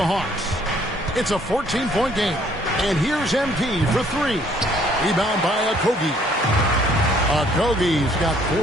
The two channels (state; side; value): normal; both; correlation 0.62